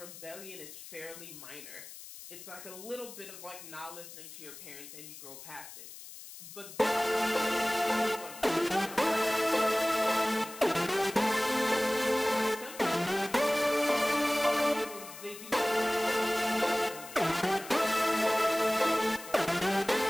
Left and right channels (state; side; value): noise; left; hiss, 14 dB below the sound